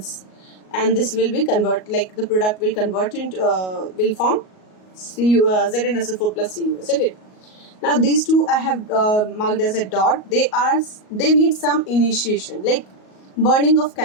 and this will be convert, like the product will convert into will form ZnSO4 plus Cu, isn't it? Now these two I have marked as a dot. They need some initiation, like burning of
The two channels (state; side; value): late; right; 38 ms